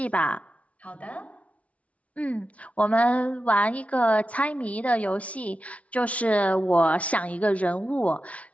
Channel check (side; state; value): right; late; 0.065 ms